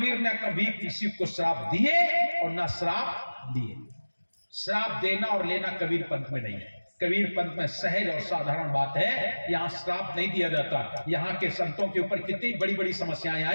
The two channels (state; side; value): inverted; both; correlation -1.00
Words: ने कभी किसी को श्राप दिए और ना श्राप लिए। श्राप देना और लेना कबीर पंथ में नहीं है। कबीर पंथ में सहज और साधारण बात है, यहां श्राप नहीं दिया जाता। यहां के संतों के ऊपर कितनी बड़ी बड़ी समस्याएं